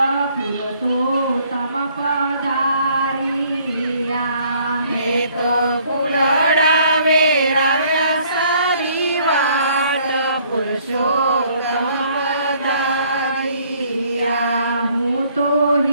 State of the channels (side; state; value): both; inverted; correlation -0.62